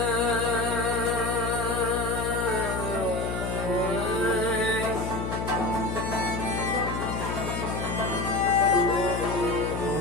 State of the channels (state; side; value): noise; left; hum, 3 dB below the sound